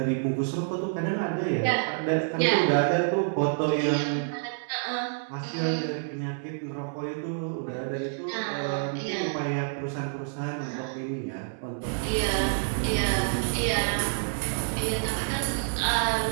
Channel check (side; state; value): left; silent; 59 dB below the other